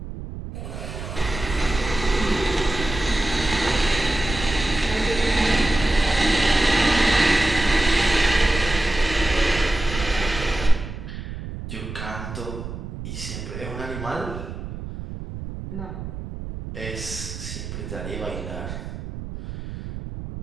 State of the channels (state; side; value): noise; right; rumble, 9 dB below the sound